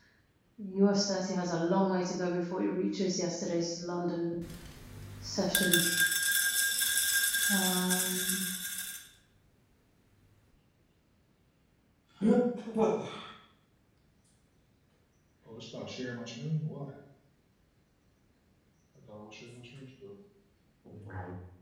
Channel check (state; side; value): identical; both; correlation 1.00